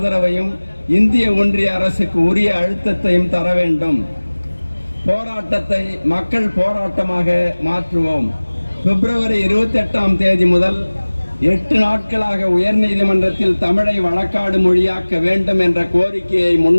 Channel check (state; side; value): inverted; both; correlation -1.00